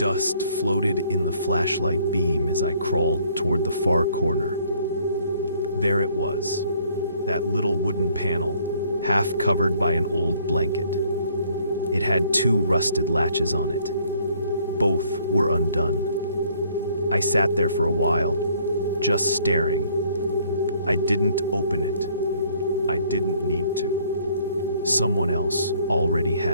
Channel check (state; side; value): inverted; both; correlation -0.62